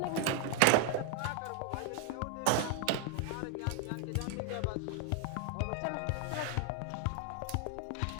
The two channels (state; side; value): different; both; correlation 0.01